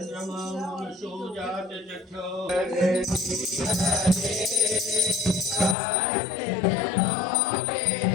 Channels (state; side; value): drops out; right; at 5.8 s